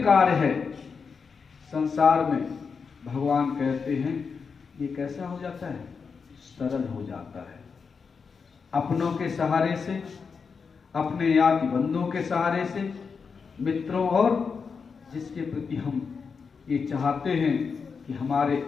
कार्य है संसार में, भगवान कहते हैं ये कैसा हो जाता है? सरल हो जाता है। अपनों के सहारे से, अपने याद बंधुओं के सहारे से, मित्रों और जिसके प्रति हम ये चाहते हैं कि हमारे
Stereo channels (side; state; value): right; quieter; 5.5 dB